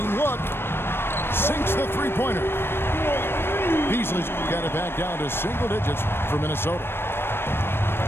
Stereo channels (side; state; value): right; late; 0.11 ms